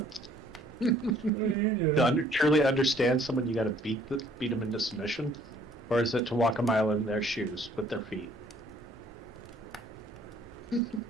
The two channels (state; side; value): normal; both; correlation 0.60